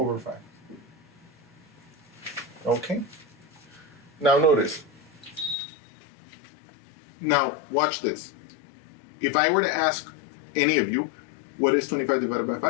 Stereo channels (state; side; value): drops out; right; at 5.6 s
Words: Okay? Now notice. Now watch this. If I were to ask any of you, what is 25 divided by